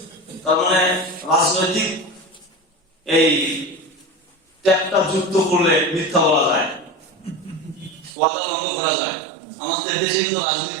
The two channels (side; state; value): left; drops out; at 8.2 s